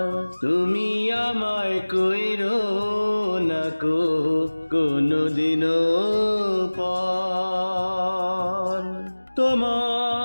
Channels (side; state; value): both; inverted; correlation -1.00